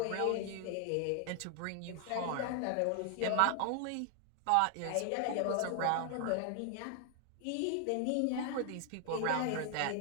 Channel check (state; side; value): different; both; correlation 0.00